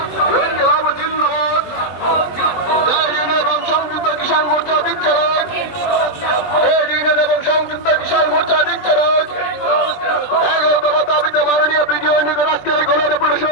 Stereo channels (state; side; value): late; right; 20 ms